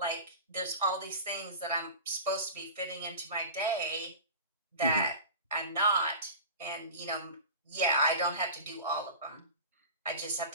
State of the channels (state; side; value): inverted; both; correlation -0.32